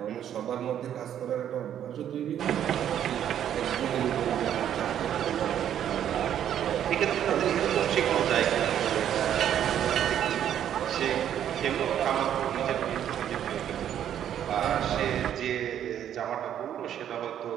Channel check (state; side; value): quieter; left; 10.2 dB